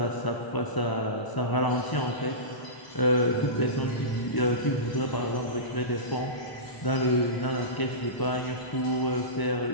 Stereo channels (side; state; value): right; late; 1.0 ms